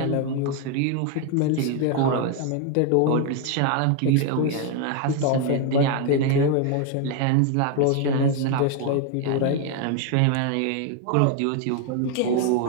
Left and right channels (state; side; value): different; both; correlation 0.00